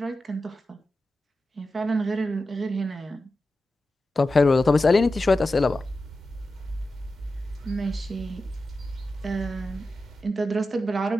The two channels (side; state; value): both; normal; correlation 0.92